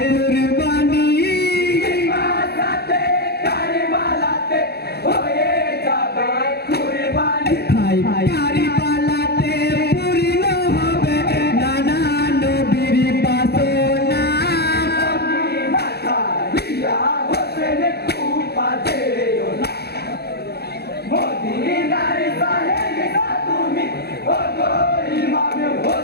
মাসাতে কারবালাতে হয়ে যাবে কুরবানি হাই কারিবালাতে পূর্ণ হবে নানা নবীর বাসনা মদিনা ছাড়িয়া হোসেন কুফা যেও না মদিনার সাহেব তুমি ওগো ইমাম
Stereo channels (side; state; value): right; late; 0.47 ms